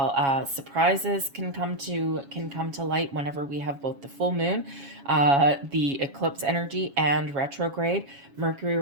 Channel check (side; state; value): left; late; 7.2 ms